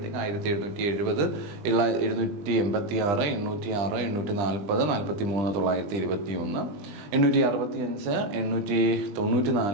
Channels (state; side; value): late; left; 20 ms